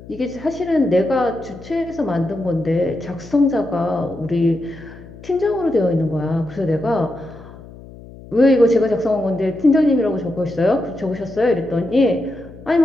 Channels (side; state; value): left; noise; hum, 18 dB below the sound